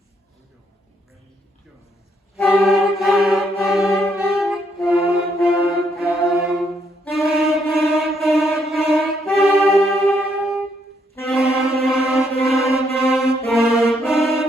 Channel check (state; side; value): normal; both; correlation 0.73